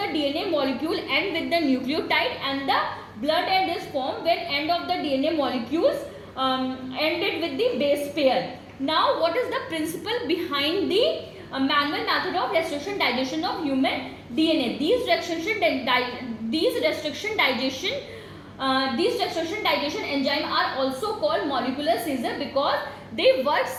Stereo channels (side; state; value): both; identical; correlation 1.00